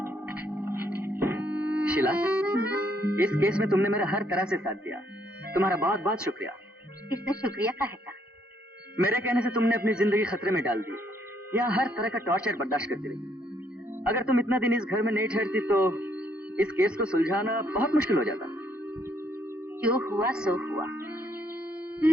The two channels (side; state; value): both; normal; correlation 0.70